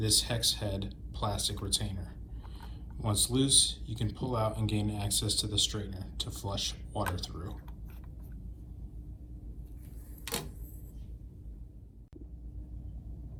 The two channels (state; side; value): identical; both; correlation 1.00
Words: hex head plastic retainer. Once loose, you can pull out and gain access to the strainer to flush water through.